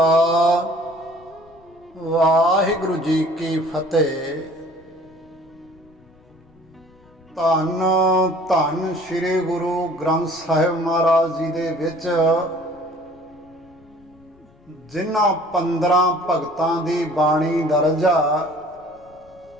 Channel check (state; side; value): noise; left; rumble, 28 dB below the sound